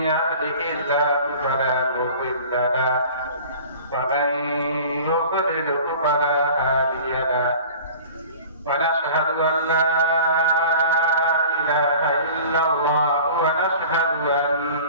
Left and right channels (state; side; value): inverted; both; correlation -0.43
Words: يهده الله فلا مضل له ومن يضلل فلا هادي له ونشهد أن لا إله إلا الله ونشهد